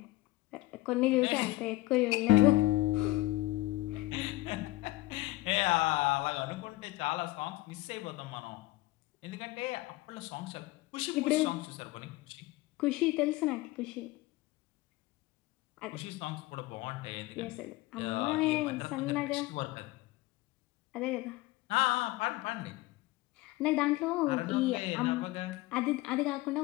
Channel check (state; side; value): quieter; right; 18.7 dB